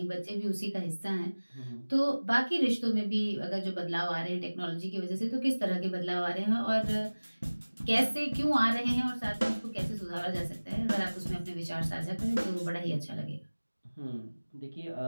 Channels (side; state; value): both; inverted; correlation -1.00